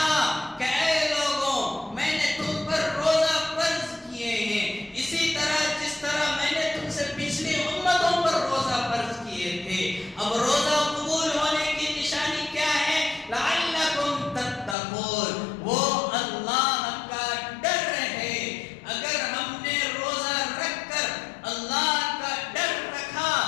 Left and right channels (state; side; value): drops out; right; at 14.8 s